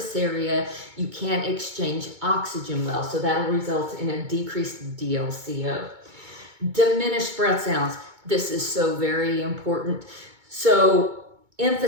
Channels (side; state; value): left; late; 2.2 ms